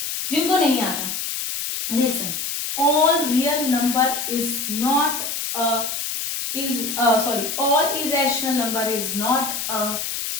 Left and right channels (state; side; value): noise; left; hiss, 3 dB below the sound